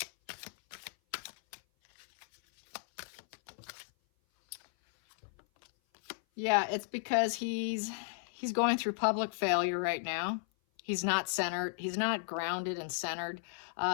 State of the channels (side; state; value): right; silent; 54 dB below the other